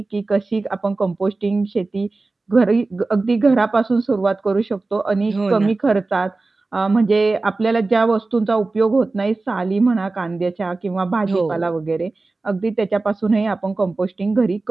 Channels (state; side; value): quieter; left; 3.4 dB